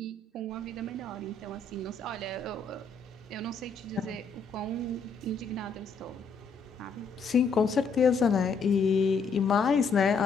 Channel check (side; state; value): right; quieter; 4.5 dB